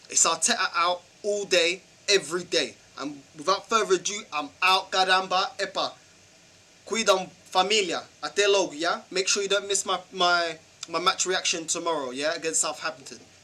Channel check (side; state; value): both; identical; correlation 1.00